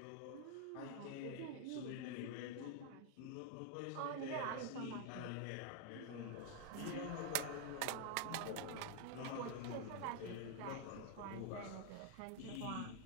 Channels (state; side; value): different; both; correlation 0.00